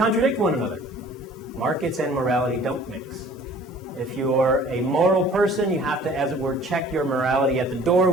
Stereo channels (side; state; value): both; normal; correlation 0.50